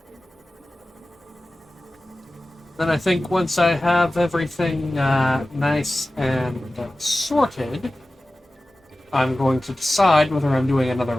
Then I think once I have everything nice and sorted, I'm going to decide whether I'm doing another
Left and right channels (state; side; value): normal; both; correlation 0.96